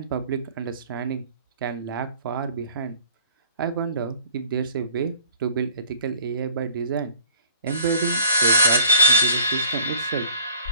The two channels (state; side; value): inverted; both; correlation -0.51